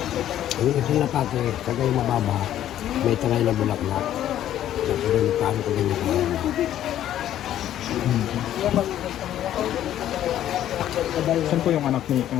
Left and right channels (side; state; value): right; quieter; 11.7 dB